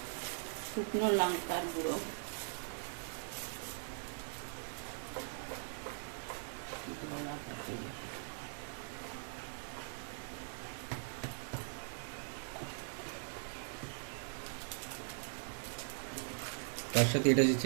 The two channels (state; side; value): silent; left; 50 dB below the other